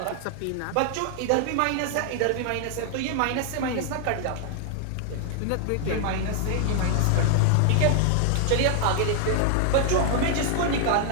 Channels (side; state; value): both; different; correlation 0.00